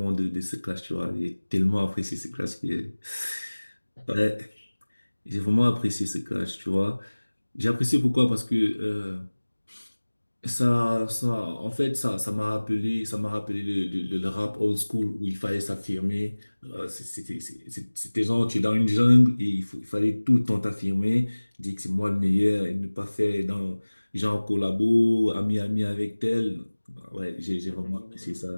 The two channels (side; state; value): both; inverted; correlation -1.00